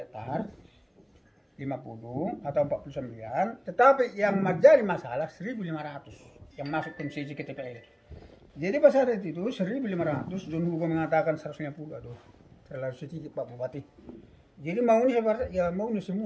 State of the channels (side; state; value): both; identical; correlation 1.00